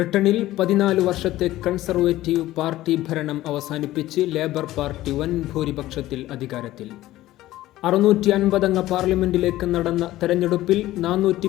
14 വർഷത്തെ കൺസർവേറ്റീവ് പാർട്ടി ഭരണം അവസാനിപ്പിച്ച് ലേബർ പാർട്ടി വൻ ഭൂരിപക്ഷത്തിൽ അധികാരത്തിൽ. 650 അംഗ പാർലമെന്റിലേക്ക് നടന്ന തെരഞ്ഞെടുപ്പിൽ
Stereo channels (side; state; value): right; quieter; 15.6 dB